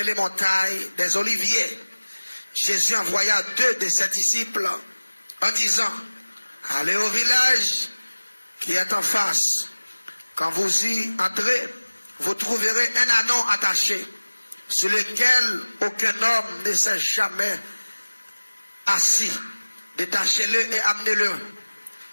montagne des Oliviers, Jésus envoya 2 de ses disciples en disant, allez au village qui est en face. Quand vous y entrez, vous trouverez un ânon attaché, sur lequel aucun homme ne s'est jamais assis. Détachez-le et amenez-le.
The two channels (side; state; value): both; inverted; correlation -1.00